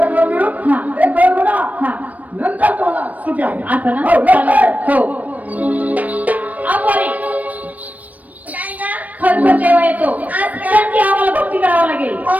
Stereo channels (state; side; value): late; left; 0.074 ms